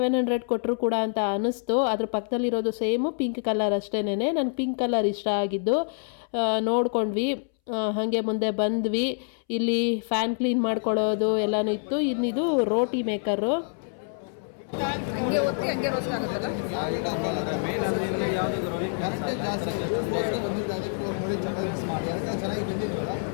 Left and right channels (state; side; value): silent; right; 60 dB below the other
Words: ಕೊಟ್ಟರು ಕೂಡ ಅಂತ ಅನ್ನಿಸ್ತು. ಅದ್ರ ಪಕ್ಕದಲ್ಲಿರೋದು ಸೇಮು ಪಿಂಕ್ ಕಲರ್ ಅಷ್ಟೇನೆ. ನನಗೆ ಪಿಂಕ್ ಕಲರ್ ಇಷ್ಟ ಆಗಿದ್ದು ನೋಡ್ಕೊಂಡ್ವಿ. ಹಾಗೆ ಮುಂದೆ ಬಂದ್ವಿ. ಇಲ್ಲಿ ಫ್ಯಾನ್ ಕ್ಲೀನ್ ಮಾಡ್ಕೊಳ್ಳೋದು ಎಲ್ಲನೂ ಇತ್ತು. ಇನ್ನಿದು ರೋಟಿ ಮೇಕರು. ಹಂಗೆ ಒತ್ತಿ ಹಂಗೆ ರೋಸ್ಟ್ ಆಗುತ್ತಲ್ಲ. ಚೆನ್ನಾಗಿ ಬಂದಿದ್ವಲ್ಲ,